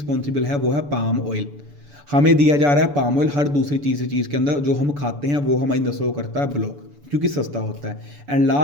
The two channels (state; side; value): late; left; 6.9 ms